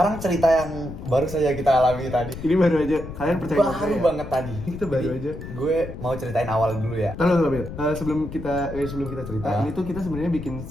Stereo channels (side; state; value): left; noise; rumble, 10 dB below the sound